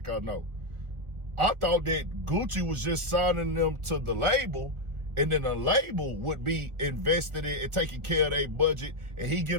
I know. I thought that Gucci was just signing them to the label, and then the label would be invested in and taking care of their budget, and he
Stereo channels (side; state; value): left; late; 1.4 ms